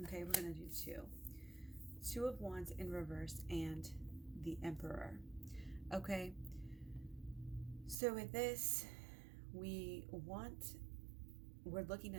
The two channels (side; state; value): left; drops out; at 8.0 s